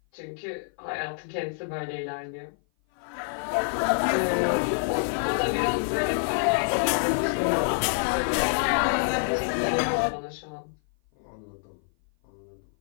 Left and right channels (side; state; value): right; silent; 56 dB below the other